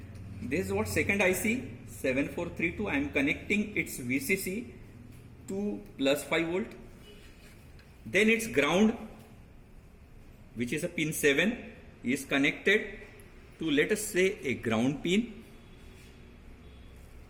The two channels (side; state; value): both; identical; correlation 1.00